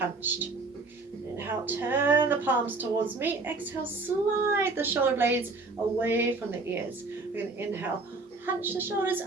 Inhale, turn the palms towards me. Exhale, slide the shoulder blades away from the ears. We're going to inhale, hunch the shoulders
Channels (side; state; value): left; quieter; 3.7 dB